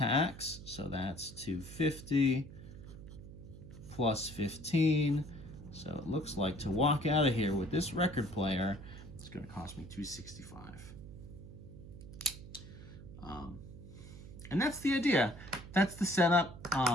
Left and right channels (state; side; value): noise; right; hum, 14 dB below the sound